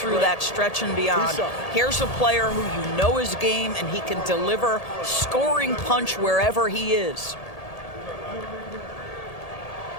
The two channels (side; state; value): right; late; 1.8 ms